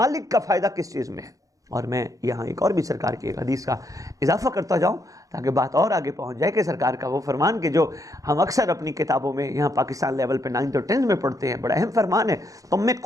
کا فائدہ کس چیز میں ہے. اور میں یہاں ایک اور بھی سرکار کی ایک حدیث کا اضافہ کرتا جاؤں تاکہ بات اور آگے پہنچ جائے کہ سرکار کا وہ فرمان کہ جو ہم اکثر اپنی کتابوں میں یہاں پاکستان لیول پہ 9th اور 10th میں پڑھتے ہیں، بڑا اہم فرمان ہے، تم میں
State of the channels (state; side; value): late; left; 0.16 ms